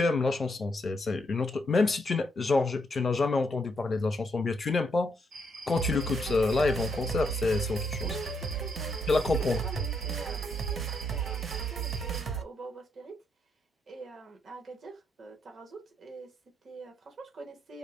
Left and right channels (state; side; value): normal; both; correlation 0.77